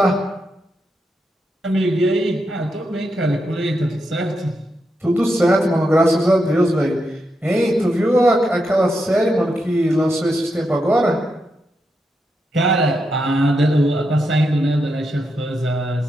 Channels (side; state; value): both; normal; correlation 0.84